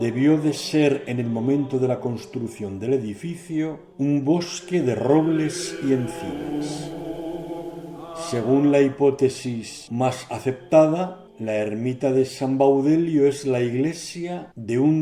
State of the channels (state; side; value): identical; both; correlation 1.00